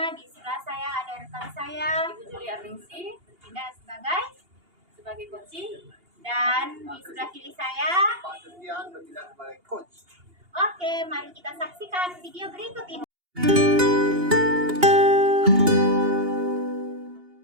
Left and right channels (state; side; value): late; left; 2.8 ms